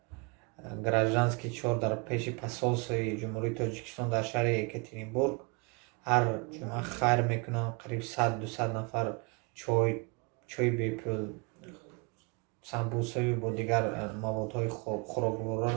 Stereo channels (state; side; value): quieter; left; 31.5 dB